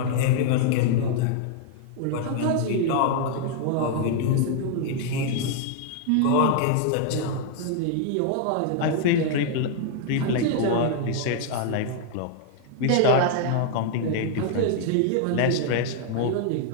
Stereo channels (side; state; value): both; different; correlation -0.01